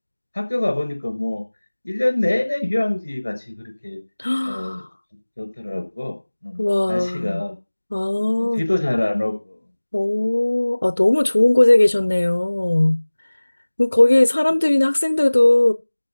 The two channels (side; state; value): both; inverted; correlation -1.00